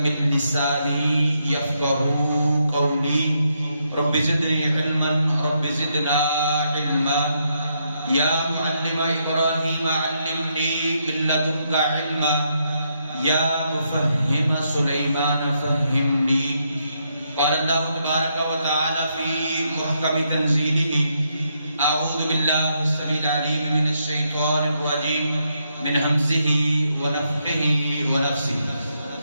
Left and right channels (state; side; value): inverted; both; correlation -0.78